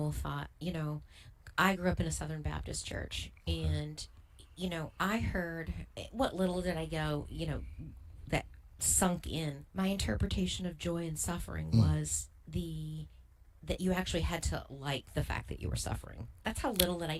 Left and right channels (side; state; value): both; identical; correlation 1.00